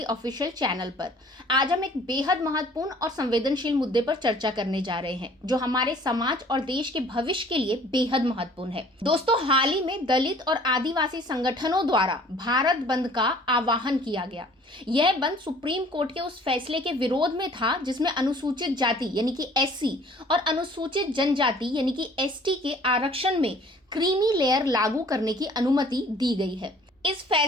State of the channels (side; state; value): both; normal; correlation 0.53